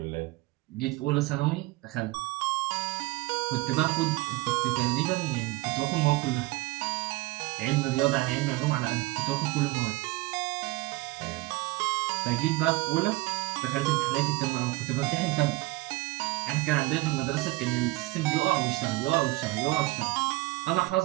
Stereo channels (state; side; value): quieter; left; 20.7 dB